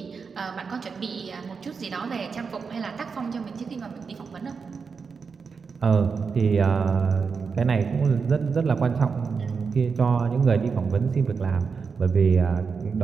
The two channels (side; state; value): left; quieter; 5.4 dB